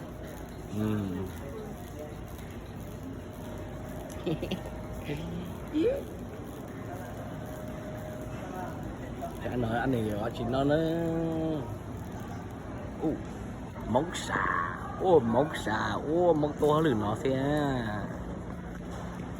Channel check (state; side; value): identical; both; correlation 1.00